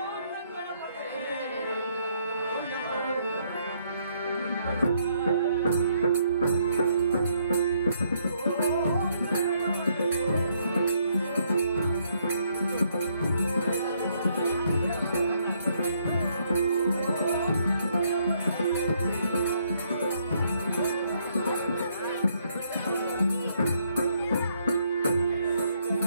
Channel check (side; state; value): both; inverted; correlation -0.71